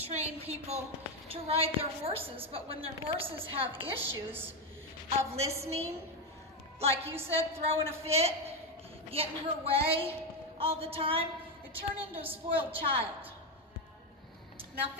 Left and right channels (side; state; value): both; normal; correlation 0.09